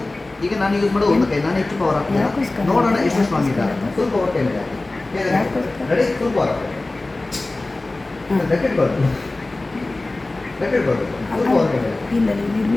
ಈಗ ನಾನು ಯೂಸ್ ಮಾಡೋದು 1 ಕೈ. ನಾನು ಹೆಚ್ಚು ಪವರ್ ಹಾಕ್ತೀನಿ, ನೋಡೋಣ ಎಷ್ಟು ಸ್ಟ್ರಾಂಗ್ ಇದೆ. ಫುಲ್ ಪವರ್ ಕೈ ಮೇಲೆ ರೆಡಿ? ಫುಲ್ ಪವರ್ ಗಟ್ಟಿಟ್ಕೊಳ್ಳಿ, ಫುಲ್ ಪವರ್ ಕೈ ಮೇಲೆ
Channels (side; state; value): right; quieter; 3.0 dB